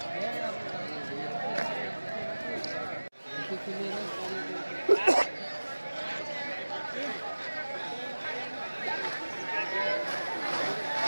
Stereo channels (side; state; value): both; inverted; correlation -1.00